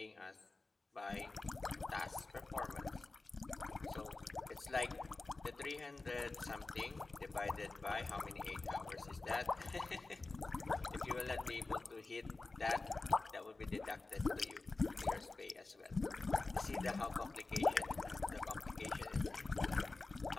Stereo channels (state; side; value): quieter; right; 3.5 dB